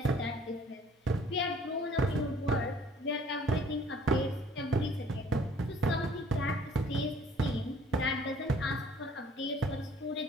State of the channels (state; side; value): normal; both; correlation 0.56